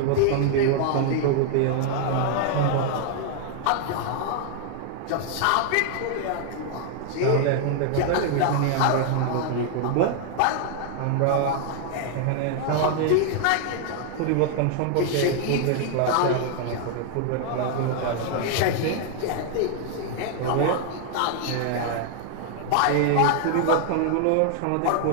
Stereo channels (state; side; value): different; both; correlation 0.00